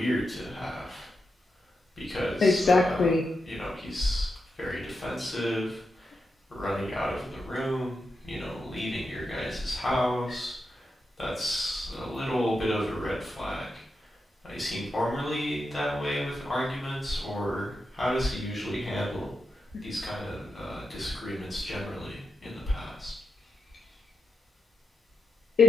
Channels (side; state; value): both; normal; correlation 0.87